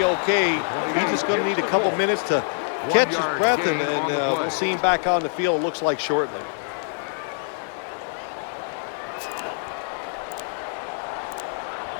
okay. He's just going to need a couple minutes to catch his breath, and we'll see him back on the field, looks like shortly.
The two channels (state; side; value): silent; right; digital silence